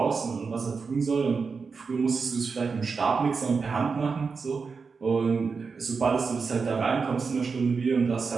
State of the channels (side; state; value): left; quieter; 5.0 dB